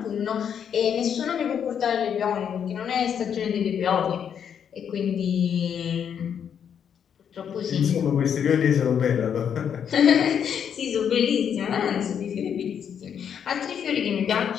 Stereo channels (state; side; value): quieter; right; 8.1 dB